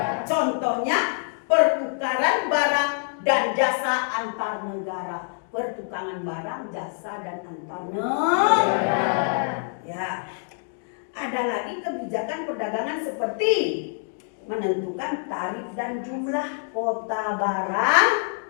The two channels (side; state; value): right; silent; 58 dB below the other